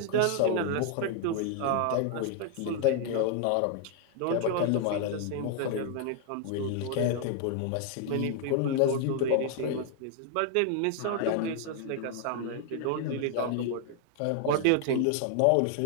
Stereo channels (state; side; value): different; both; correlation 0.00